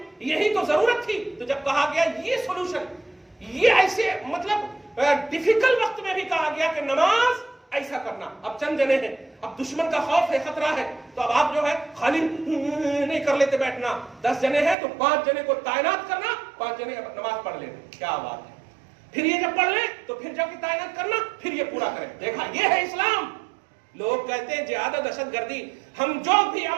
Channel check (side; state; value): left; drops out; at 14.8 s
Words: یہی تو ضرورت تھی۔ تو جب کہا گیا یہ سولوشن، یہ ایسے مطلب ڈیفیکلٹ وقت میں بھی کہا گیا کہ نماز ایسا کرنا۔ اب چند جنے ہیں، اب دشمن کا خوف ہے، خطرہ ہے، تو اب آپ جو ہے خالی نہیں کر لیتے بیٹھنا، 10 جنے ہیں تو 5 جنے کو تعینات کرنا، 5 جنے نماز پڑھ لینا، کیا بات ہے۔ پھر یہ جب پڑھ لیں تو پھر جب تعینات کرنا، پھر یہ پورا کریں۔ دیکھا، یہ ہے اسلام۔ لوگ کہتے ہیں جہاد و دہشت گردی، ہم جو بھی